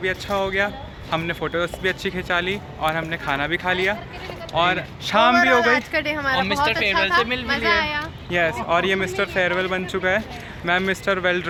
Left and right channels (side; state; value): both; identical; correlation 1.00